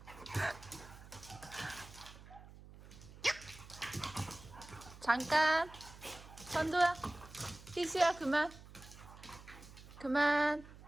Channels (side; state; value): right; noise; hum, 18 dB below the sound